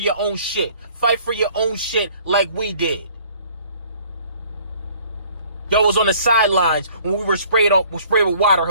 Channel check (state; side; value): inverted; both; correlation -0.55